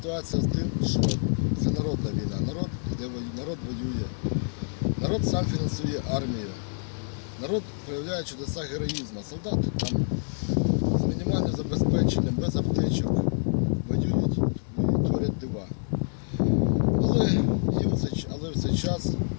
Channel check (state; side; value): silent; right; 60 dB below the other